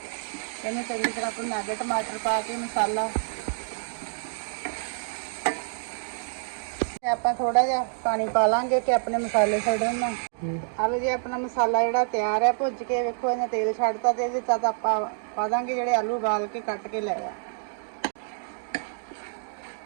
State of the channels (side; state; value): left; silent; digital silence